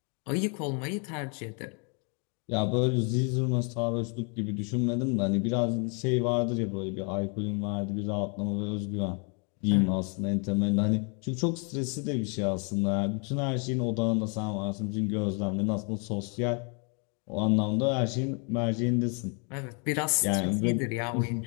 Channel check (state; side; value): quieter; right; 37.3 dB